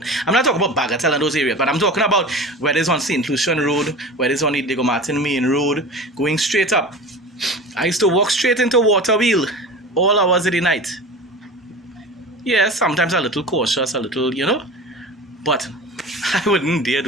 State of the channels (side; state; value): both; normal; correlation 0.34